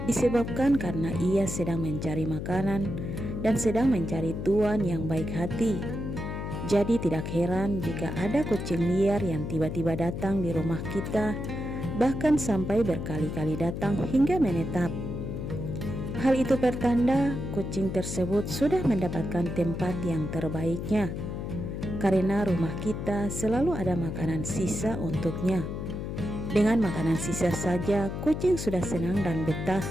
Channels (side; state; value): left; noise; hum, 5 dB below the sound